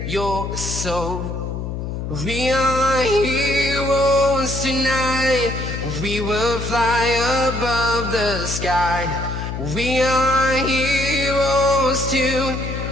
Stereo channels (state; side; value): noise; left; hum, 5 dB below the sound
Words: your soul. We are heroes tonight. We will fly above the sky. We are heroes